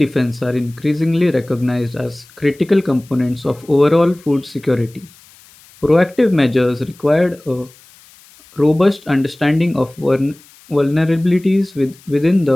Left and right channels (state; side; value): noise; left; hiss, 26 dB below the sound